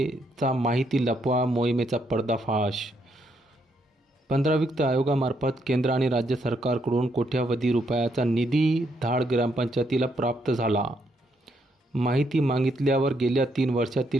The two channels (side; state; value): both; normal; correlation 0.75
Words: माहिती लपवा मोहिमेचा पर्दाफाश। 15 वित्त आयोगामार्फत केंद्र आणि राज्य सरकारकडून कोट्यावधी रुपयाचा निधी धाड ग्रामपंचायतीला प्राप्त झाला। माहिती मागितल्यावर गेल्या 3